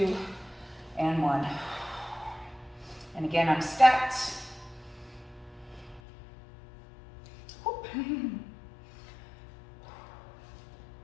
and 1. And again, I'm stacked. Whoop.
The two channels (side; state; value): right; drops out; at 6.0 s